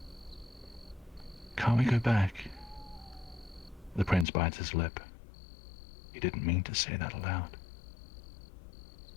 Can't we go back? The prince bites his lip. He didn't mean to say that aloud.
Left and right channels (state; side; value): drops out; right; at 4.2 s